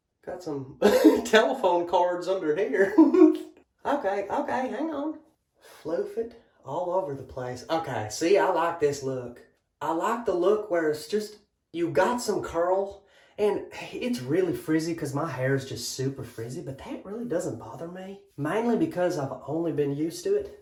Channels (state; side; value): identical; both; correlation 1.00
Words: got some telephone cords under here. Okay, hang on. Floof it all over the place. Okay, see, I like this look. I like the look where it's just, you got some curl, and it's really frizzy because my hair is just super frizzy, but that really doesn't bother me. Mainly because I've only been used to